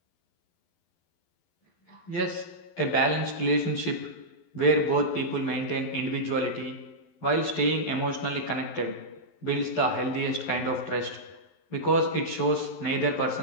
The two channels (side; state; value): right; late; 12 ms